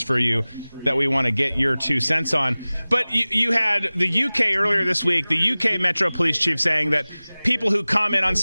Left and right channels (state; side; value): inverted; both; correlation -0.99